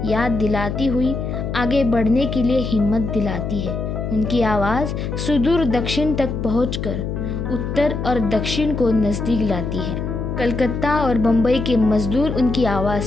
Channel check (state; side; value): noise; left; hum, 4 dB below the sound